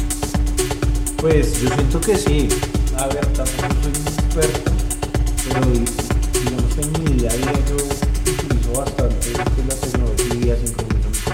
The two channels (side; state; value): both; identical; correlation 1.00